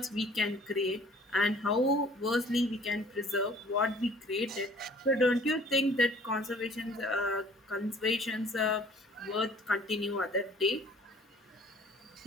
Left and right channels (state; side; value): normal; both; correlation 0.53